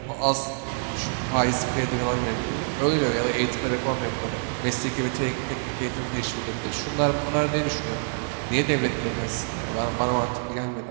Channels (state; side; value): silent; left; 61 dB below the other